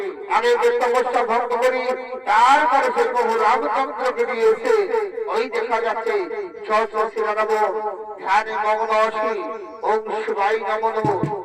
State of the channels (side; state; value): both; identical; correlation 1.00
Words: আমি তপস্যা ভঙ্গ করি, তারপরে সেই বহু রামচন্দ্রকে নিয়ে এসে ওই দেখা যাচ্ছে সহস্রী লাগাবো, ধ্যানে মগ্ন আসি, ওম শিবাই নমঃ নমঃ